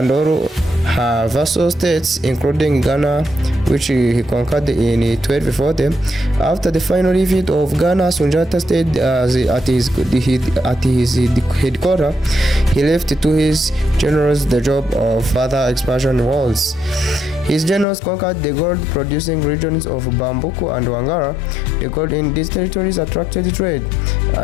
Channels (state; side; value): drops out; right; at 17.9 s